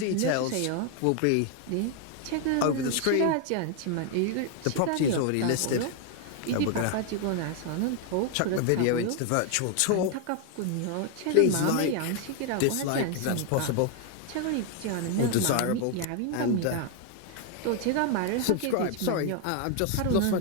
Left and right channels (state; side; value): different; both; correlation 0.00